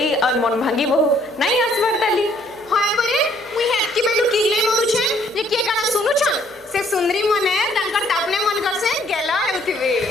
और मन भांगी बहु नहीं आसबार ताली हाय परे मुई हेतकी बेलु किले मरु छे जे के काना सुनु छन से सुंदरी मने तांकर तापने मन कर से गेला हेउथिबे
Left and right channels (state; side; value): normal; both; correlation 0.64